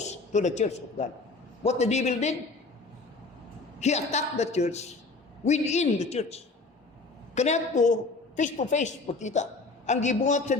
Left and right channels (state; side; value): quieter; right; 3.7 dB